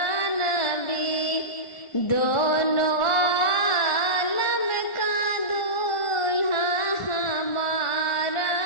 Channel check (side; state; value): right; late; 1.4 ms